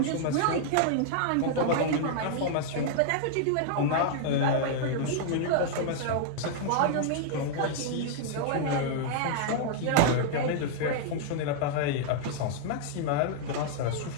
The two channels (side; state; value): both; different; correlation -0.01